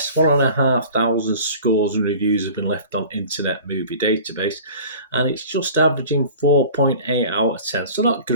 1,500 scores and reviews have been left on Internet Movie Database, and it's just averaging 4.8 out of 10. So not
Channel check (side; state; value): both; inverted; correlation -0.42